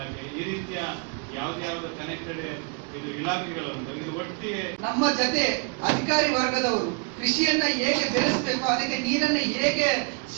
ಈ ರೀತಿಯ ಯಾವ್ದು ಕನೆಕ್ಟೆಡ್ ಇದು ಇಲಾಖೆಗಳು ಇದು ಒಟ್ಟಿಗೆ ನಮ್ಮ ಜೊತೆ ಅಧಿಕಾರಿ ವರ್ಗದವರು ಕೃಷಿಯನ್ನ ಹೇಗೆ ಬೆಳೆಸಬೇಕು, ಅದಕ್ಕೆ ನೀರನ್ನ ಹೇಗೆ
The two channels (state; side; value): quieter; left; 36.0 dB